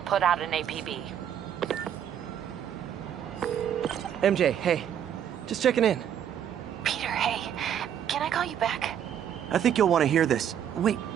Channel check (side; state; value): left; quieter; 9.4 dB